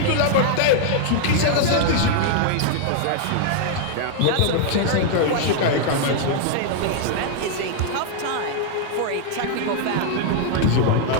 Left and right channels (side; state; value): both; different; correlation 0.00